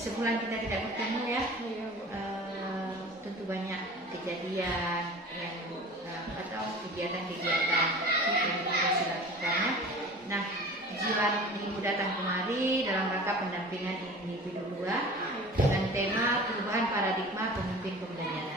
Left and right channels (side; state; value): both; normal; correlation 0.39